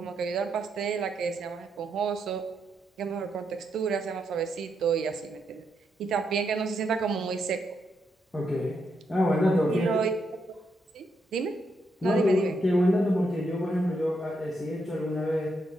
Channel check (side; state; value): both; normal; correlation 0.80